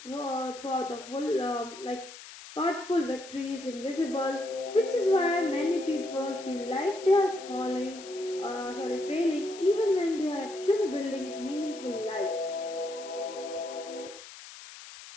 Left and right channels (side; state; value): left; noise; hiss, 15 dB below the sound